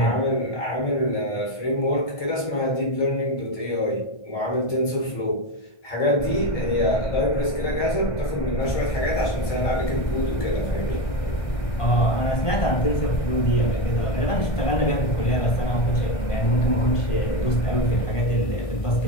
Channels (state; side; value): late; right; 1.6 ms